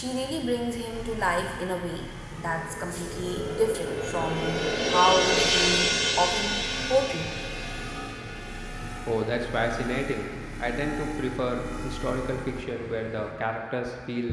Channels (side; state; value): both; identical; correlation 1.00